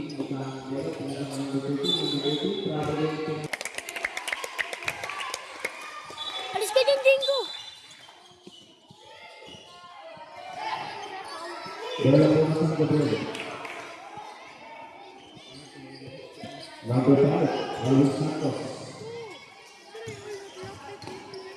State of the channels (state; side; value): identical; both; correlation 1.00